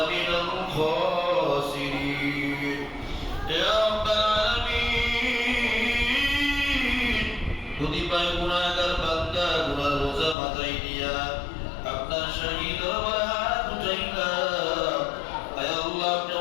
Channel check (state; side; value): drops out; right; at 10.4 s